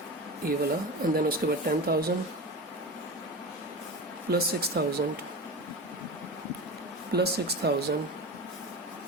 ये वाला, एंड देन उसके बाद 10,000 प्लस 6,000 प्लस 6,000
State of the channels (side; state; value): both; normal; correlation 0.27